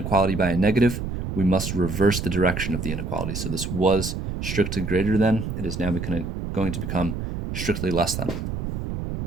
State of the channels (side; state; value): right; noise; rumble, 5 dB below the sound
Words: by a negative, we must reverse the direction of the inequality. So this was strictly greater than. It is now going to become strictly less than.